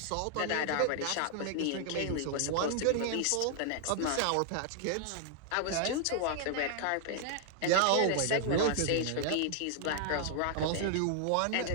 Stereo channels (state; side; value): different; both; correlation -0.01